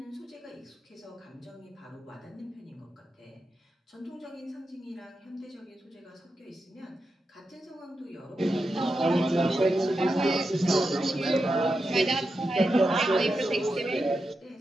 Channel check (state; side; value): normal; both; correlation 0.88